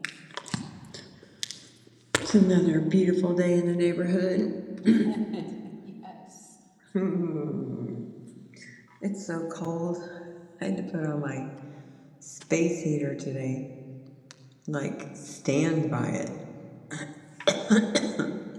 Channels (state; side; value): identical; both; correlation 1.00